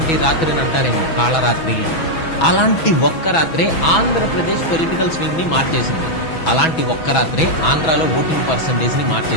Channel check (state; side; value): late; right; 6.1 ms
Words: రాత్రిని అంటారేమో కాళరాత్రి అని. అలాంటి ఒక్క రాత్రే ఆంధ్రప్రదేశ్ పొలిటికల్ స్వింగ్ ని మార్చేసింది. అలాంటి ఒక్క రాత్రే ఆంధ్రాలో ఓటింగ్ పర్సంటేజ్ ని